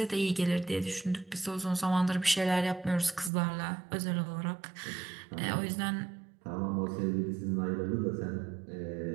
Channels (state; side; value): drops out; left; at 3.3 s